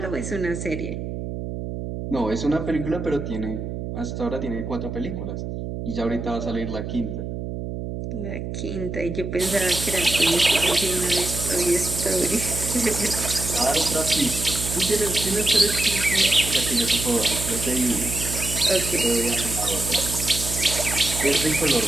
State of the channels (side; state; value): right; noise; hum, 6 dB below the sound